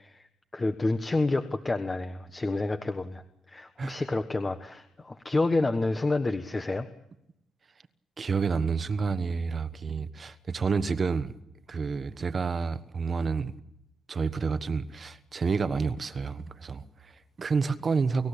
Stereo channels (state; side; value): normal; both; correlation 0.90